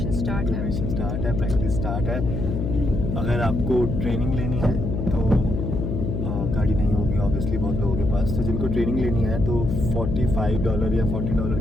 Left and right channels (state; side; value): noise; left; hum, 2 dB below the sound